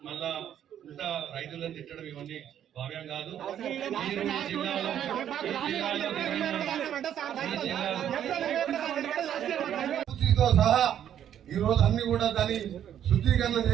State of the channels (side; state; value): left; quieter; 10.1 dB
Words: మళ్ళా ఇంత రైతులను తిట్టడం ఇవన్నీ భావ్యం కాదు. మీరు సహా ఈ రోజు అన్ని కూడా దాన్ని శుద్ధీకరణ